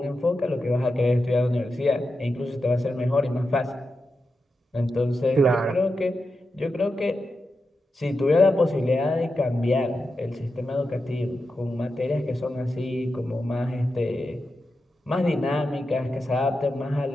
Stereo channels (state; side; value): normal; both; correlation 0.89